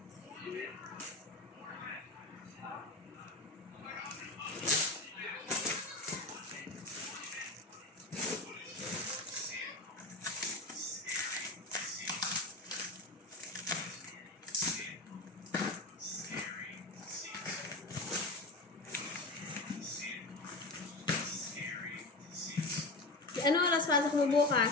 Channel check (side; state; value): right; quieter; 3.1 dB